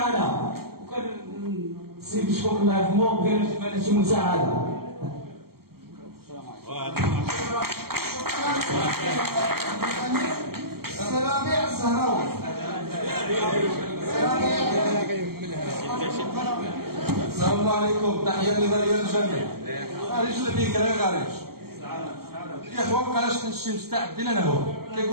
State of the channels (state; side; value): late; left; 0.95 ms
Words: وكان السيد شكون الله يرحمه بغينا شي مساعده. السلامع الزهراوي. السلام عليكم، تحية نظرية للجميع. رجل فيك غارج. يا اخوان بقاش كنشي مستعدين انا هو.